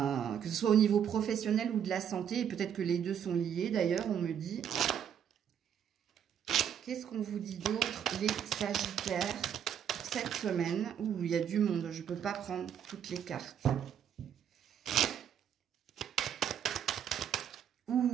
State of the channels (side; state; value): left; quieter; 8.8 dB